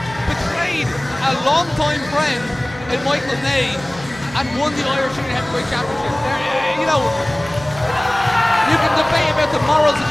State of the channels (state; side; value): noise; right; hum, 18 dB below the sound